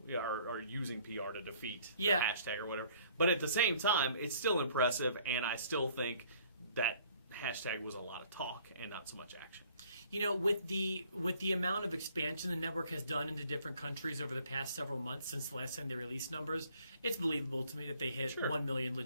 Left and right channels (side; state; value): both; inverted; correlation -0.59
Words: or using PR to defeat the hashtag or whatever. But at the same time, it's still impressive, and I still think that hashtag was a lot of talk and not so much action. With the amount of expansion the network has done into different countries over the past several months since the last time they released numbers, it's believable to me that they hit 1 million